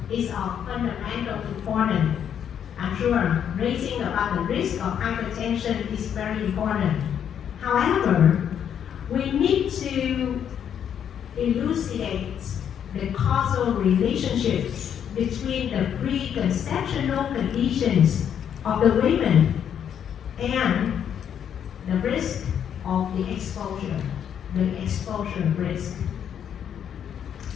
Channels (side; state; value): right; quieter; 8.8 dB